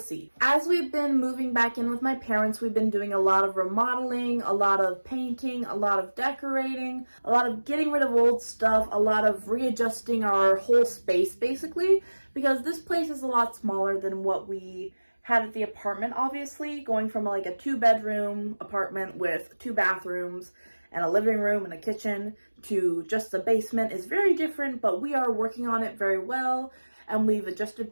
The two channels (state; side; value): inverted; both; correlation -1.00